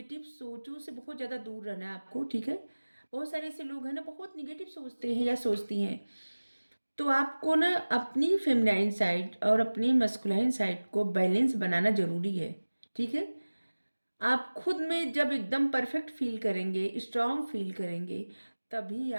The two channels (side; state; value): both; inverted; correlation -1.00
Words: सोचों से बहुत ज़्यादा दूर रहना है आपको, ठीक है। बहुत सारे ऐसे लोग हैं ना, बहुत निगेटिव सोचते हैं या सोचती हैं, तो आपको ना अपनी फेमिनाइन साइड और अपनी मस्कुलाइन साइड को बैलेंस बनाना ज़रूरी है, ठीक है। आप खुद में जब एकदम परफेक्ट फील करेंगे, स्ट्रांग फील करेंगे, तभी